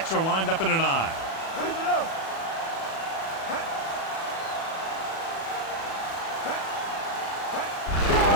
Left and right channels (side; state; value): right; late; 36 ms